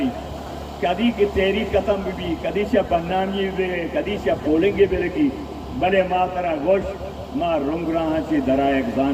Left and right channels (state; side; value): identical; both; correlation 1.00